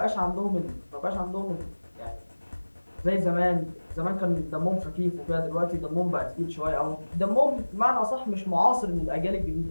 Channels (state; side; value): inverted; both; correlation -1.00